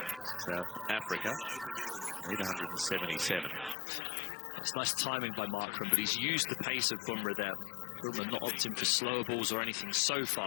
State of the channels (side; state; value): right; drops out; at 3.8 s